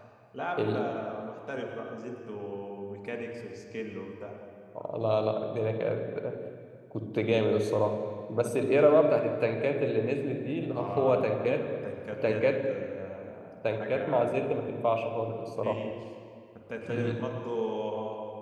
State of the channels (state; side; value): identical; both; correlation 1.00